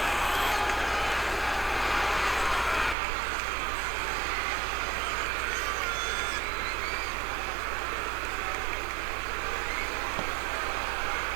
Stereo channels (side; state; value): left; drops out; at 3.0 s